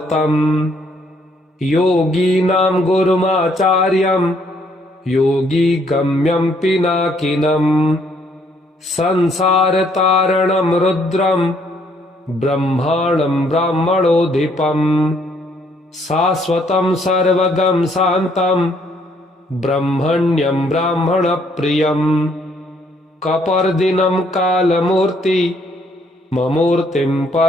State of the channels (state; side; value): normal; both; correlation 0.68